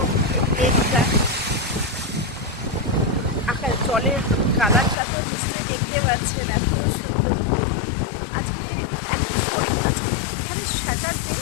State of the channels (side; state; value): right; drops out; at 5.0 s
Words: লেকটা। আকাশ জলের কালারটা তো নিশ্চয়ই দেখতে পাচ্ছেন, এত সুন্দর। আজকে আজকে এখানে স্যাটারডে